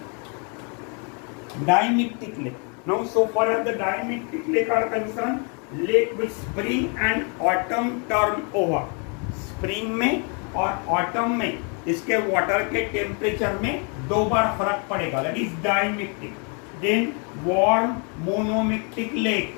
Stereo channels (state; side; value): quieter; right; 36.7 dB